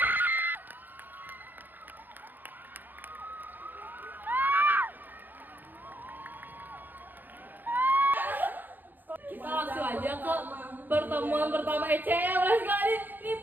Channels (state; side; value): late; left; 0.088 ms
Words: Kita langsung aja ke pertemuan pertama ECM. Let's go. Ini